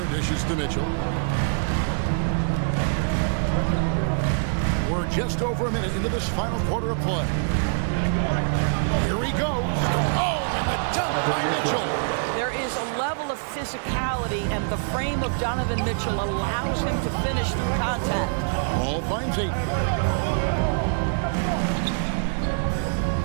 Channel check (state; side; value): silent; left; digital silence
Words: dishes to Mitchell. We're just over a minute into this final quarter of play. Here he goes. Oh, and the dunk by Mitchell. There is a level of physicality, and the frame of Donovan Mitchell allows him to finish through contact. Paul finds it.